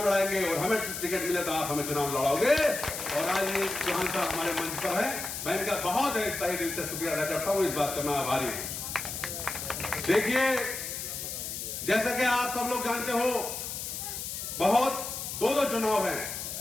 लड़ाएंगे, और हमें टिकट मिले तो आप हमें चुनाव लड़ाओगे। और आज ये चौहान साहब हमारे मंच पर है, मैं इनका बहुत तहे दिल से शुक्रिया अदा करता हूं, इस बात का मैं आभारी हूं। देखिए, जैसा कि आप सब लोग जानते हो, बहुत दो चुनाव हैं,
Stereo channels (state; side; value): noise; left; hiss, 6 dB below the sound